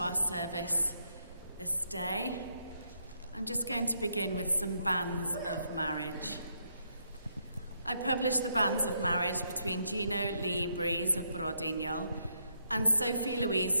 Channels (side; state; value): both; inverted; correlation -0.77